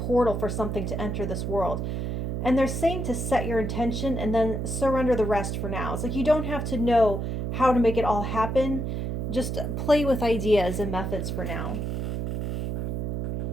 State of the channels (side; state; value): right; noise; hum, 2 dB below the sound